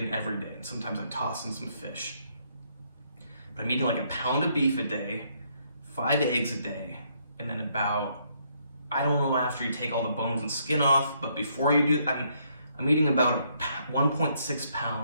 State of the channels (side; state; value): both; inverted; correlation -0.71